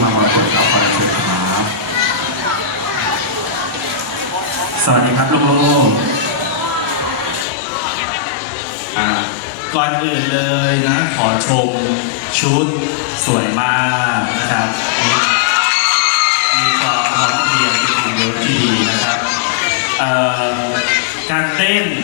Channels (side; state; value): right; drops out; at 7.5 s